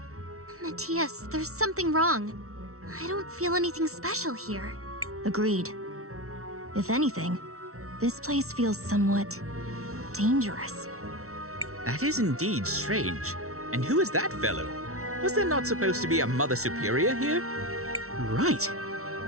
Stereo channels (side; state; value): left; late; 0.63 ms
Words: Matthias, there's something wrong. I don't feel anything special here. Agreed. If anything, this place feels somewhat dangerous. That is indeed strange. And who is that fellow? Was there not supposed to be a Mother Superior here? Right.